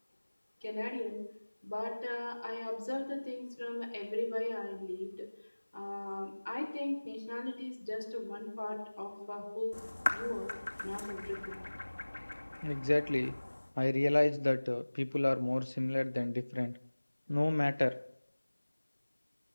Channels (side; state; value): both; inverted; correlation -1.00